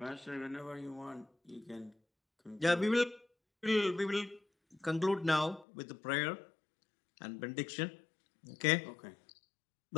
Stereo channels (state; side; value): drops out; right; at 5.7 s